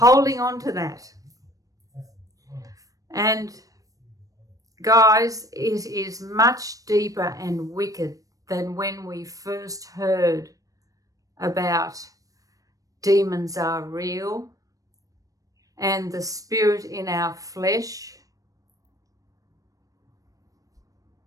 on to that. And guys, it is much deeper and wicked than when we first heard about demons are real and the spirit in our flesh.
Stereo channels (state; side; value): late; left; 0.17 ms